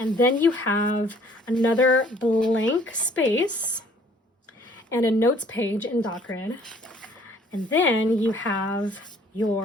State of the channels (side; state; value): both; normal; correlation 0.58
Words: then you have another blank space and a notes page in DocGrid. And then you have